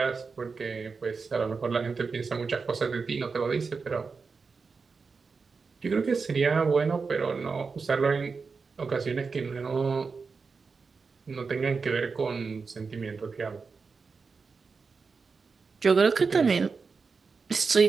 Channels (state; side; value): quieter; left; 4.8 dB